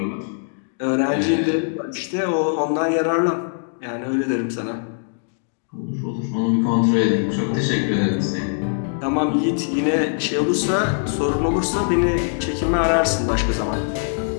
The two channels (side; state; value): right; silent; digital silence